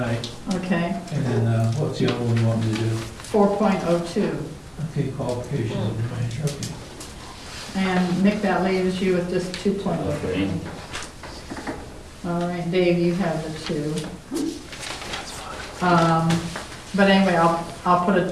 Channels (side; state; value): both; identical; correlation 1.00